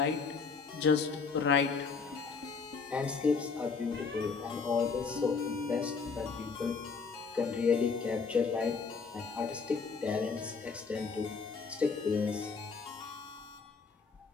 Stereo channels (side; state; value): right; quieter; 5.0 dB